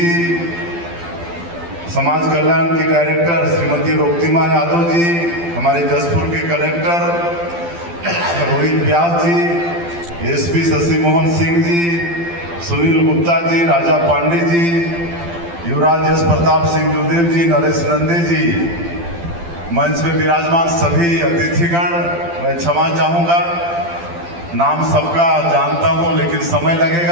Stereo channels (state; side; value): late; left; 12 ms